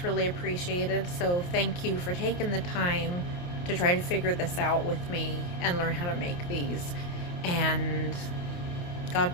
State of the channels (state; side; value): late; right; 28 ms